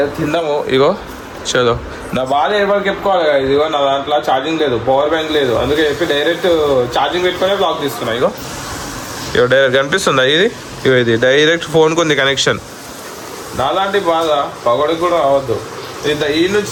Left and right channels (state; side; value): identical; both; correlation 1.00